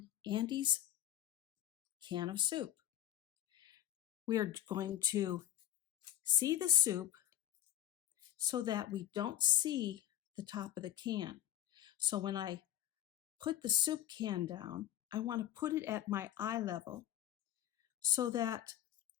Andy's can of soup. We are going to see the soup so that we don't see the top of the can. So when I put the soup can down, I want to put it at my eye level so that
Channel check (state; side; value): quieter; right; 12.2 dB